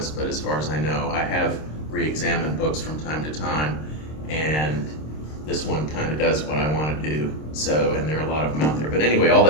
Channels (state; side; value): late; right; 26 ms